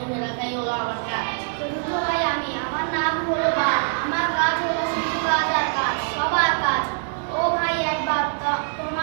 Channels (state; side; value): silent; left; digital silence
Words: রাখাই হলো আমার কাজ। চতুর্থ ভাই আমি, আমার নাম হলো বা, আমার কাজ হলো শুধু কাজ আর কাজ, সবার কাজ। ও ভাই একবার